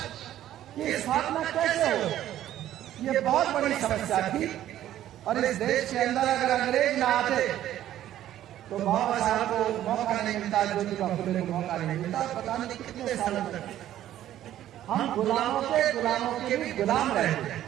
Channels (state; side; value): quieter; left; 12.4 dB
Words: की स्थापना कैसे हो? ये बहुत बड़ी समस्या थी। और इस देश के अंदर अगर अंग्रेज ना आते तो बाबा साहब को मौका नहीं मिलता, ज्योतिबा फुले को मौका नहीं मिलता। पता नहीं कितने सालों तक हम गुलामों के भी गुलाम रहे।